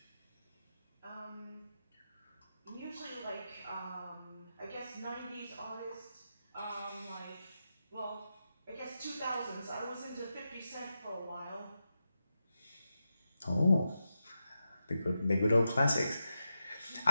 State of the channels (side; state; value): both; inverted; correlation -0.89